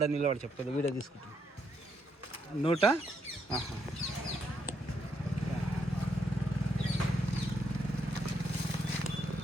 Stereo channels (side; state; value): both; normal; correlation 0.77